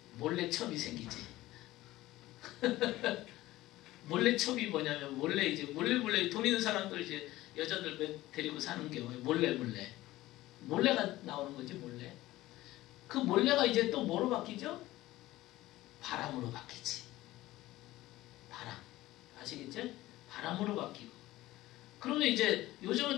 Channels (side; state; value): right; quieter; 16.9 dB